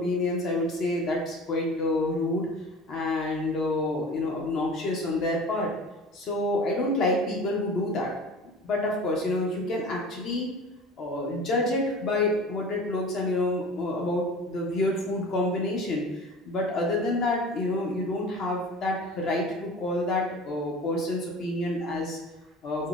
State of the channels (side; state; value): both; normal; correlation 0.39